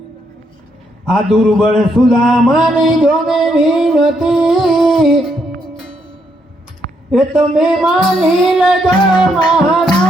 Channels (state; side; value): normal; both; correlation 0.76